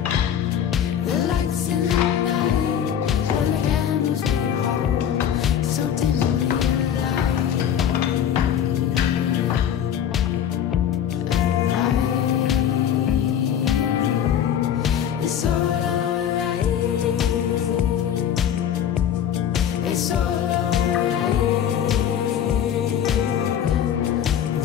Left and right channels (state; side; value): quieter; right; 9.4 dB